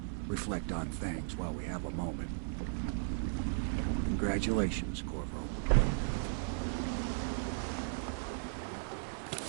Reflect on things while we have a moment. Congratulations, Corvo.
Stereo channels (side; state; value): left; silent; 54 dB below the other